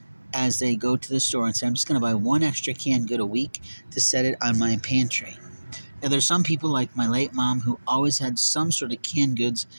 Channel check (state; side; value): inverted; both; correlation -1.00